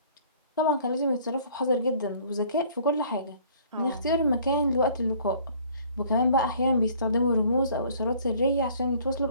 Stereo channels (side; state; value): both; inverted; correlation -0.55